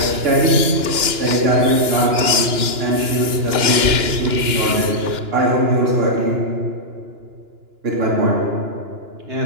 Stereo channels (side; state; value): left; late; 2.9 ms